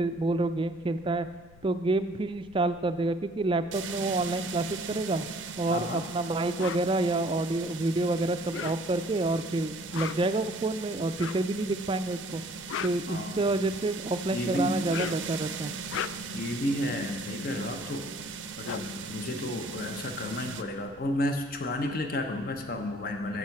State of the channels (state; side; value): noise; left; rumble, 23 dB below the sound